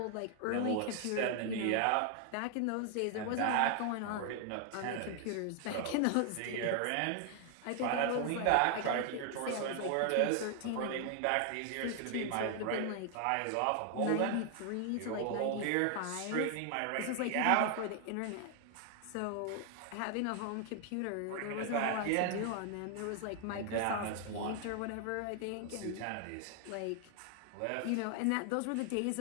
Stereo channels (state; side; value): different; both; correlation 0.00